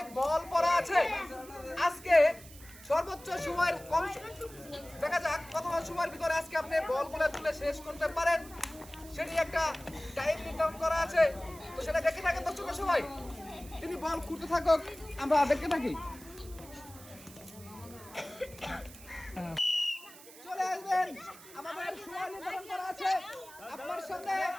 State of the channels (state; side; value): noise; right; hiss, 19 dB below the sound